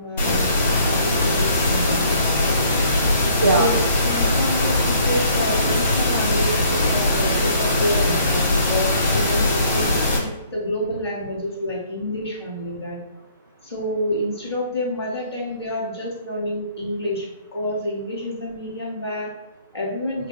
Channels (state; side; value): inverted; both; correlation -0.60